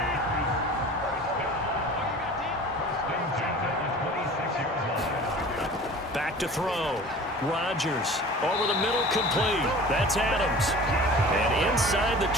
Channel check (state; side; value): normal; both; correlation 0.42